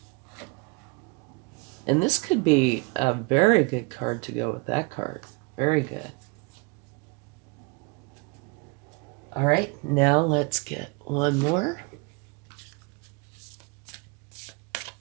And this could be a very good card to go with that card. Very good. All right, now let's get one more.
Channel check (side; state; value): left; quieter; 29.8 dB